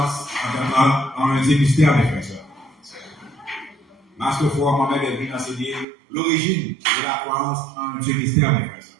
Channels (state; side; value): drops out; left; at 5.9 s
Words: en un Dieu mystère, mes frères et sœurs. Master Fouad Mohamed est venu enseigner l'origine de la croyance en un Dieu mystère, mes frères et sœurs.